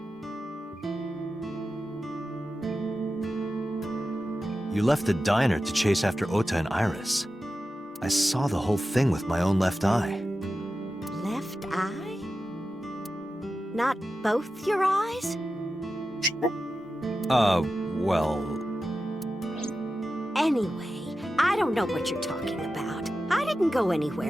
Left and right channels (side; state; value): both; normal; correlation 0.92